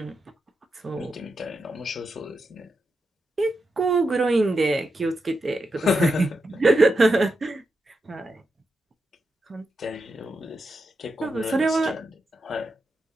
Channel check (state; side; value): normal; both; correlation 0.87